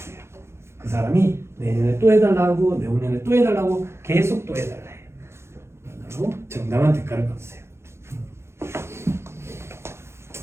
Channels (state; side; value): late; left; 0.13 ms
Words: 그 사람이 내년에 또 해달라고 내후년에 또 해달라고 계속 또 해달라 해요. 그리고 정당한 대가를 받으세요.